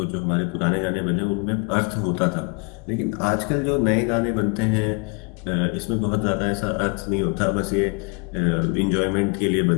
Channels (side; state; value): right; quieter; 33.0 dB